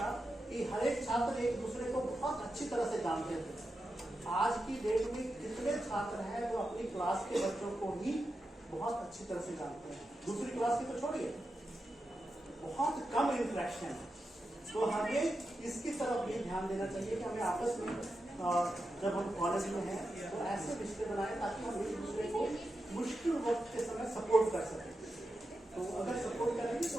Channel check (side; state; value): both; normal; correlation 0.89